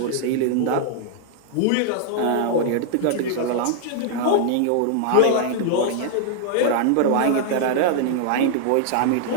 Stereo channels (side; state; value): both; different; correlation -0.01